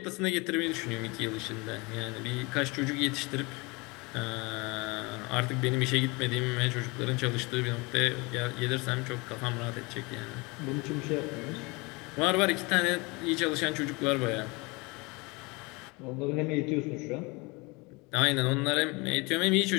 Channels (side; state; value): right; quieter; 26.5 dB